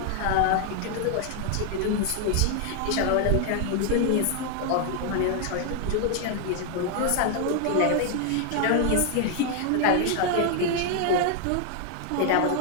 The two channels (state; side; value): different; both; correlation 0.00